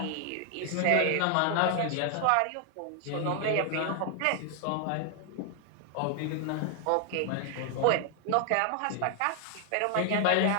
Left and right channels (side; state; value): both; different; correlation 0.00